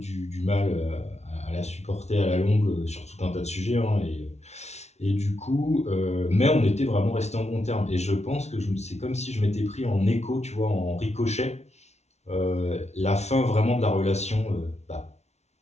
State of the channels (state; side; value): late; right; 0.32 ms